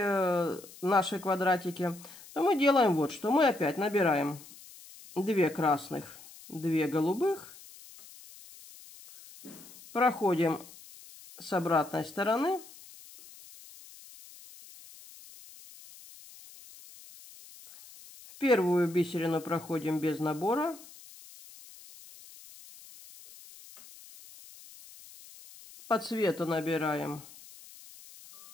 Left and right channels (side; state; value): left; noise; hiss, 20 dB below the sound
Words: наши квадратики, то мы делаем вот что. Мы опять набираем 2 красных, 2 голубых. Проходим с обратной стороны. В первую бисерину проходим без набора. По цвету набираем.